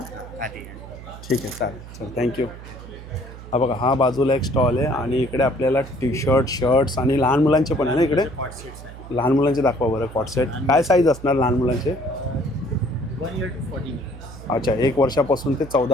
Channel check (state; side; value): noise; right; hum, 15 dB below the sound